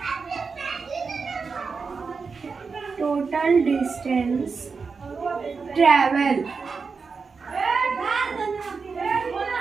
टोटल डिस्टेंस ट्रेवल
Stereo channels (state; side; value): quieter; left; 5.0 dB